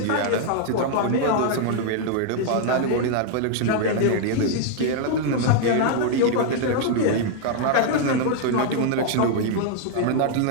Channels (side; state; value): both; different; correlation 0.00